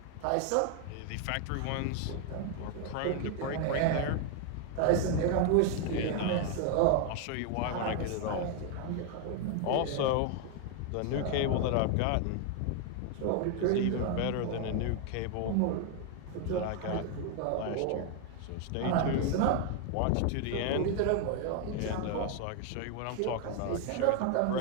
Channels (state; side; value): different; both; correlation 0.01